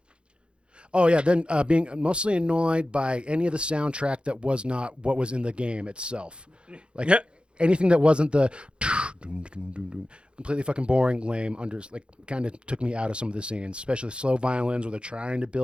being mostly annoyed by any of the soundtrack that was not what was in the game itself. Like, anything that wasn't the completely fucking boring, lame, kind of took me out of some of the scenes, especially slow violins where they're trying to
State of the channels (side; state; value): left; late; 0.055 ms